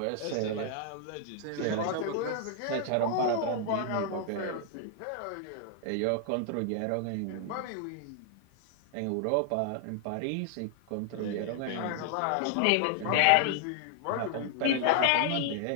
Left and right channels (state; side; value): different; both; correlation 0.00